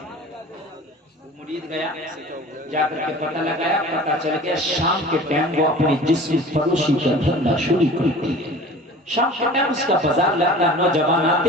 مرید گیا، جا کر کے پتہ لگایا، پتہ چل گیا شام کے ٹائم وہ اپنی جسم فروشی کا دھندا شروع کرتی ہے۔ شام کے ٹائم اس کا بازار لگتا ہے، نوجوان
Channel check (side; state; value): both; normal; correlation 0.42